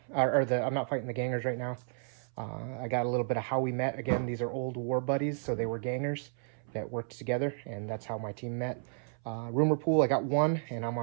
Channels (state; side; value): silent; left; 56 dB below the other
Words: I'm not fighting the gangers right now. I got a little bit of how we met. Again, these are old war buddies, so they were gangers that worked together, and that's how my team met. Rumor pool, I got 1, and I'm